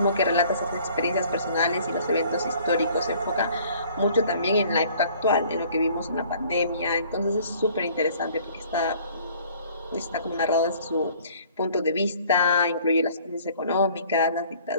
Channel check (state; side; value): inverted; both; correlation -0.55